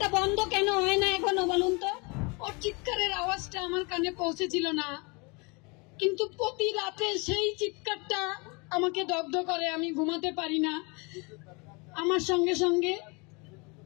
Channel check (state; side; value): quieter; right; 29.6 dB